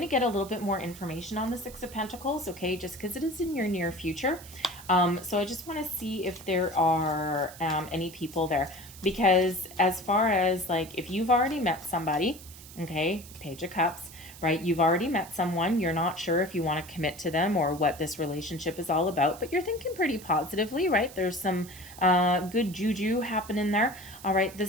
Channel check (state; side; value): noise; right; hiss, 17 dB below the sound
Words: to get a little bit more information on the Six of Pentacles, okay, just because it is in your near future. So I just want to see if there are any people there. Because as far as, like, if you've already met somebody, okay, Page of Cups, right? You've already met someone. You're not sure if you want to commit to them or what this relationship is all about, but you're thinking pretty positively, right? There's some good juju happening there. All right, the